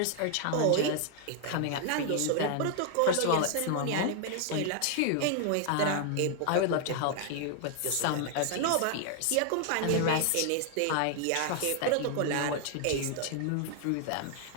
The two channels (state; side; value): different; both; correlation 0.00